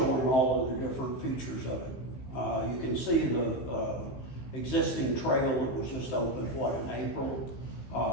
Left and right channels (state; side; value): late; right; 15 ms